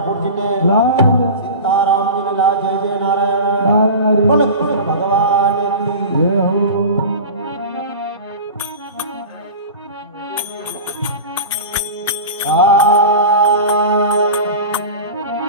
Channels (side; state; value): both; inverted; correlation -0.32